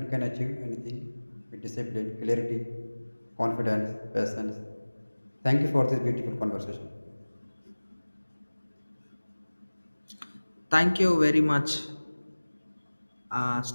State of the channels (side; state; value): both; inverted; correlation -1.00